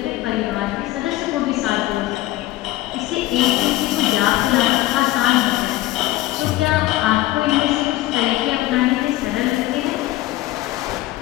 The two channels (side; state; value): right; quieter; 16.8 dB